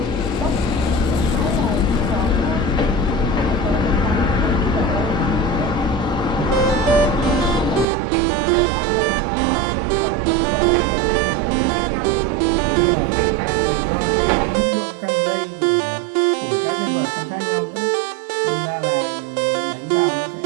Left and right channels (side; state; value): left; drops out; at 7.9 s